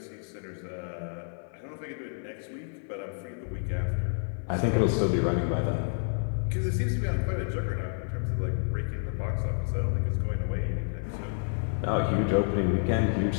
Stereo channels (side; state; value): right; silent; 58 dB below the other